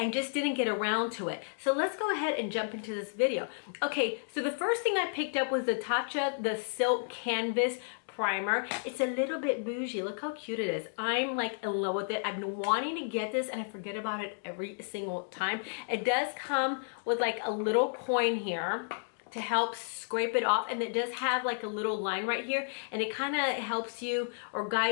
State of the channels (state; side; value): silent; right; digital silence